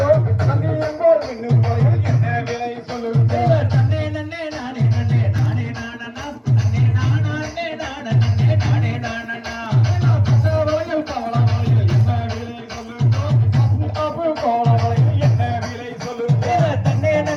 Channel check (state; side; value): identical; both; correlation 1.00